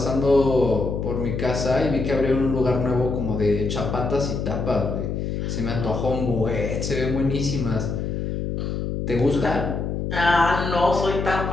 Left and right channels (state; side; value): noise; left; hum, 3 dB below the sound